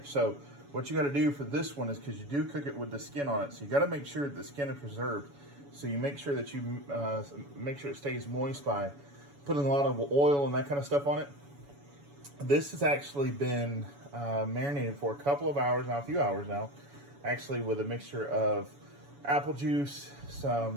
So what you got to do for this one is, because you do cook it with the skin on it, so you got to make sure that the skin is preserved. So you make sure that you make sure it stays moist by putting a lot of oil and that kind of stuff on it. This has actually been marinated for a couple of hours now, a few hours now, actually, with a mixture of apple juice,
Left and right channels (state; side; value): late; left; 7.1 ms